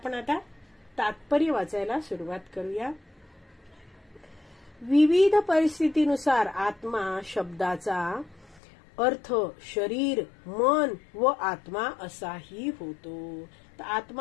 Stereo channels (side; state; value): right; drops out; at 8.6 s